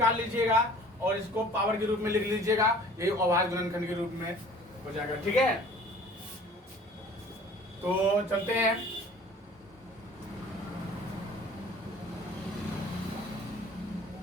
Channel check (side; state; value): both; normal; correlation 0.49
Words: लीजिएगा और इसको पावर के रूप में लिख लीजिएगा, यही अभाज्य गुणनखंड के रूप में हो जाएगा। ठीक है, तो चलते हैं।